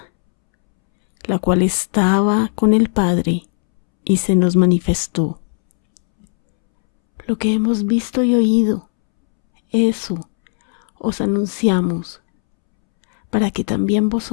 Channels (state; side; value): silent; right; 68 dB below the other